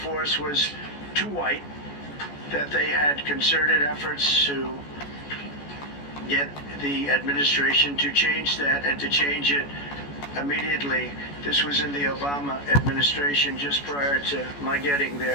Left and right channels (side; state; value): right; late; 14 ms